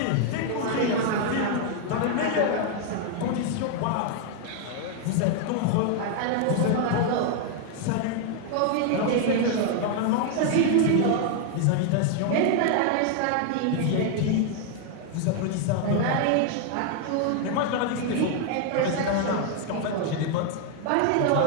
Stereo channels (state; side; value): different; both; correlation 0.00